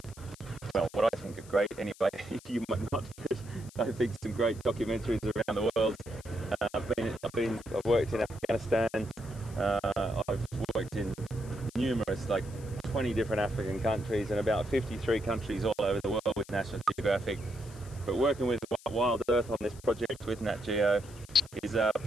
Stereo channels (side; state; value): left; noise; hiss, 21 dB below the sound